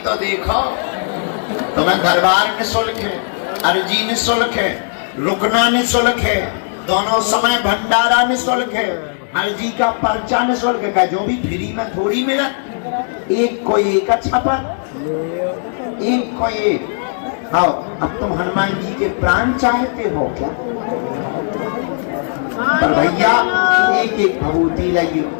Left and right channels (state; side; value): silent; right; 68 dB below the other